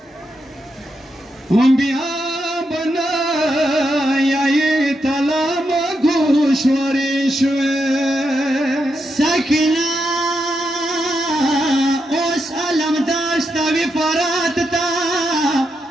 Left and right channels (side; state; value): both; normal; correlation 0.84